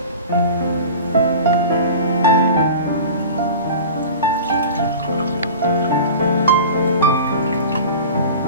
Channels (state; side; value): inverted; both; correlation -0.36